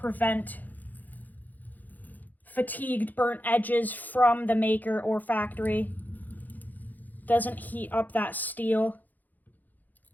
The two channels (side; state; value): right; late; 0.083 ms